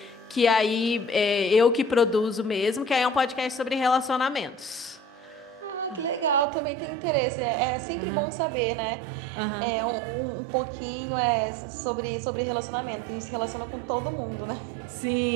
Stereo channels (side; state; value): left; drops out; at 6.5 s